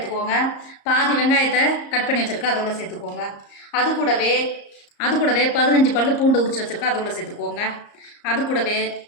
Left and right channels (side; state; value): right; late; 34 ms